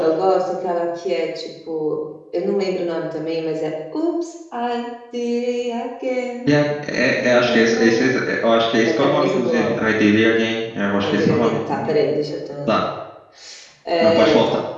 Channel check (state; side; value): identical; both; correlation 1.00